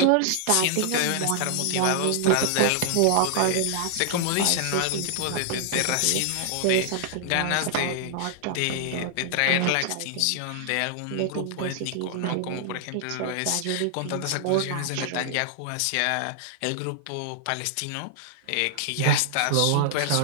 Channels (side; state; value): both; different; correlation 0.00